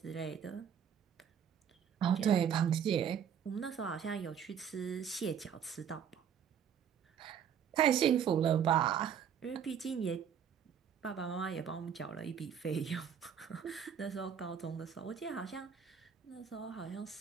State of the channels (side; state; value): left; quieter; 8.1 dB